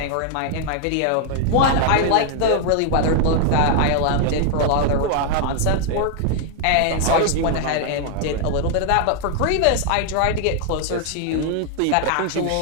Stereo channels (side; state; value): both; different; correlation 0.00